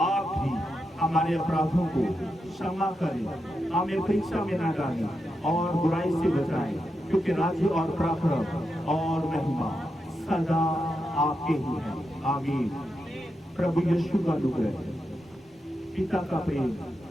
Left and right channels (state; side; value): normal; both; correlation 0.86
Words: आप भी हमारे अपराधों को क्षमा करें, हमें परीक्षा में न डालें और बुराई से बचाएं, क्योंकि राज्य और पराक्रम और महिमा सदा आपके ही है। आमीन। प्रभु यीशु का अनुग्रह, पिता का प्रेम